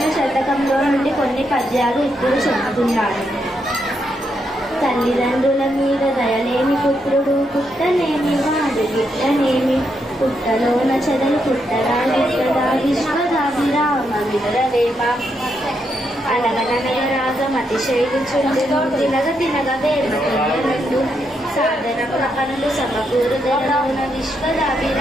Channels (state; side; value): normal; both; correlation 0.80